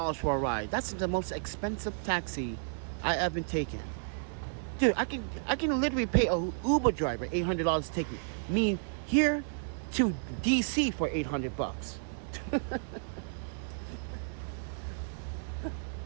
for a ride? That's the most expensive taxi I ever taken. Dude, I can literally pay an Uber driver $800 to take me here to DC for $800 bucks.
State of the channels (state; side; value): silent; left; 56 dB below the other